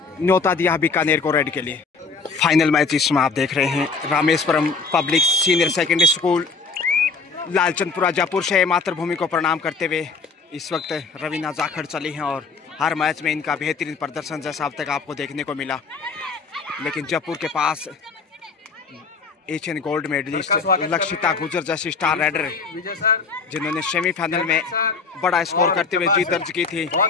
न्योता दिया बीकानेर को रेड के लिए। फाइनल मैच इसमें आप देख रहे हैं Rameshwaram public senior secondary school Lalchandpura Jaipur से मातृभूमि को प्रणाम करते हुए इस वक्त रवीना जाखड़ चली हैं और हर मैच में इनका बेहतरीन प्रदर्शन जैसा अब तक आपको देखने को मिला। लेकिन जयपुर के पास एशियन गोल्ड मेडलिस्ट लक्षिता गुजर जैसी स्टार राइडर जिन्होंने सेमीफाइनल में बड़ा स्कोर करते हुए जीत दर्ज की थी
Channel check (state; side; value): quieter; right; 4.6 dB